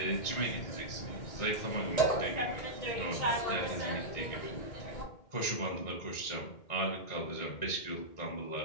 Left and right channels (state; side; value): late; right; 2.1 ms